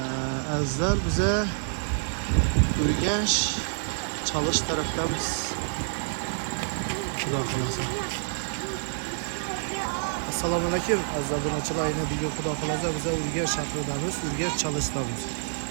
bizə Ürgənç Çalış tərəfdəmiz. Xuda xalasa. Assalamu alaikum. Əzizlər yine bir gün Xuda xalasa bizə Ürgənç şəhərindəmiz, Ürgənç Çalışdəmiz.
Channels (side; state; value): left; silent; digital silence